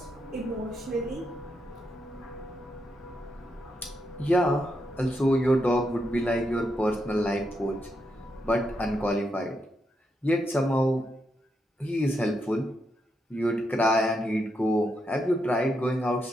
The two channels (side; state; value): both; normal; correlation 0.82